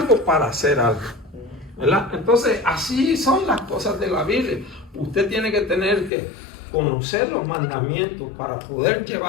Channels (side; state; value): right; drops out; at 6.1 s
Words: para hacer algo, ¿verdad? Entonces, así son las cosas de la Biblia. Usted tiene que tener que conocer los mandamientos para poder